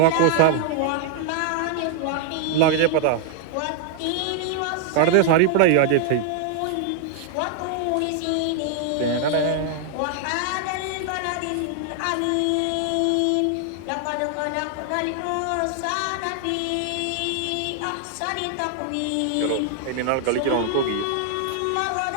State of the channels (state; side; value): different; both; correlation 0.00